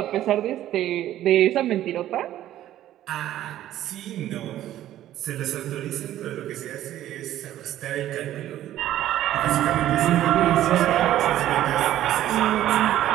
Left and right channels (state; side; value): quieter; left; 12.9 dB